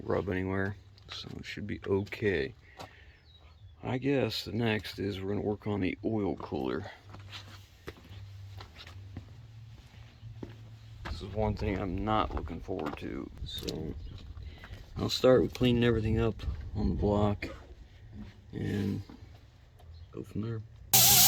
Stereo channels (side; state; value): both; identical; correlation 1.00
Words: rub anywhere. So it should be okay. I guess the next is we're going to work on the oil cooler. This is one thing I'm not looking forward to. So I'll start with cleaning everything up on the block and go from there.